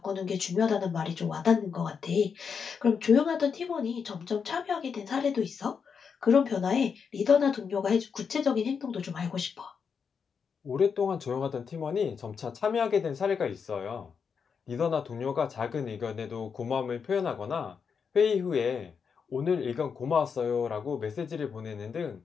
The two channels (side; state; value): right; quieter; 6.2 dB